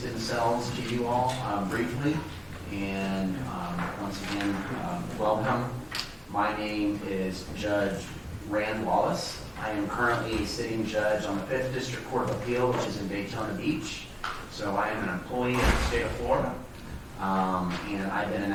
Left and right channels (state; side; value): identical; both; correlation 1.00